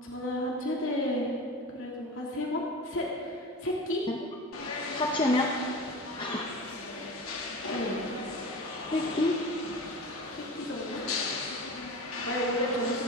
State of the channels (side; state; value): both; normal; correlation 0.32